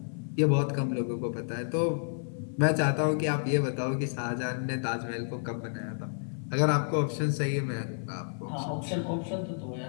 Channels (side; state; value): right; silent; 58 dB below the other